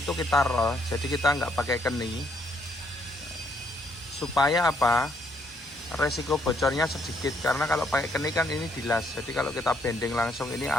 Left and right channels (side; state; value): both; normal; correlation 0.70